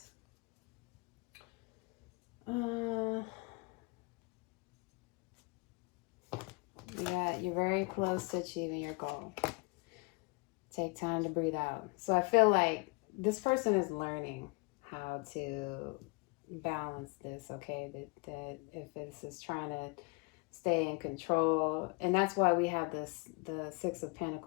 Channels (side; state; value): right; quieter; 28.4 dB